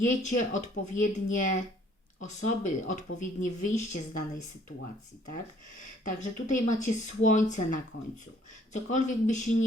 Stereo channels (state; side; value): normal; both; correlation 0.60